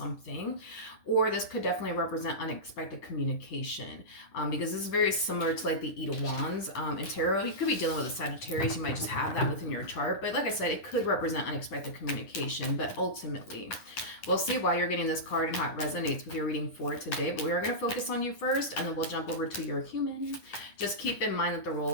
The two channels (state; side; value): late; right; 10 ms